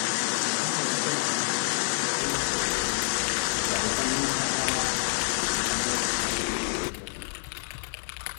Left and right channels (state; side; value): silent; right; digital silence